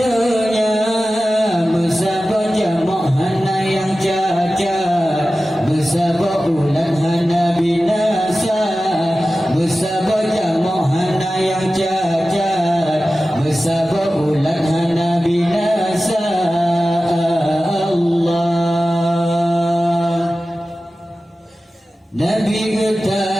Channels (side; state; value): both; normal; correlation 0.95